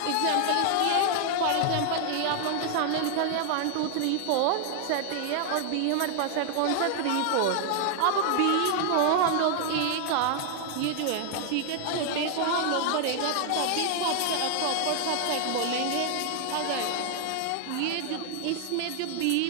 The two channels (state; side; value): different; both; correlation 0.00